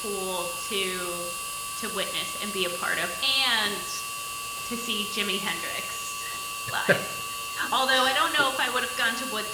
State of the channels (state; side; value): identical; both; correlation 1.00